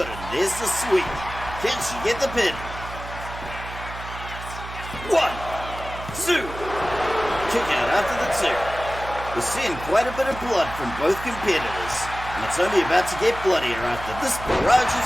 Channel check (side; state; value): right; noise; hum, 11 dB below the sound